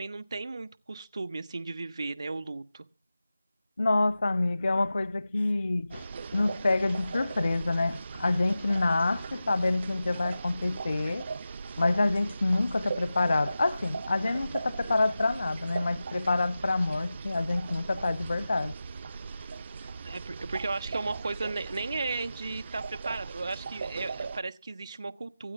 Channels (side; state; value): both; inverted; correlation -0.94